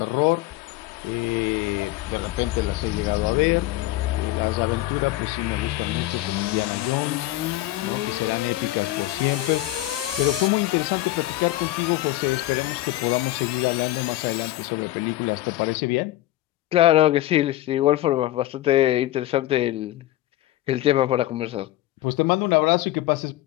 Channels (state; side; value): quieter; right; 16.2 dB